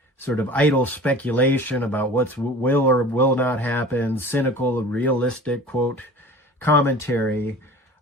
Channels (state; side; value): normal; both; correlation 0.41